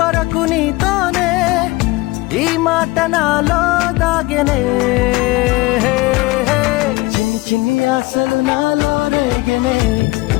వరకు నీతోనే ఈ మాట నాలో దాగెనే చిన్ని చిన్ని ఆశలు నాలో రేగెనే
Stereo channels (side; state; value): right; quieter; 21.4 dB